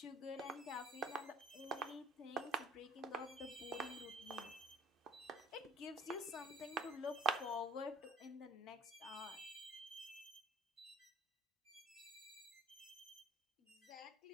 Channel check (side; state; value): both; normal; correlation 0.54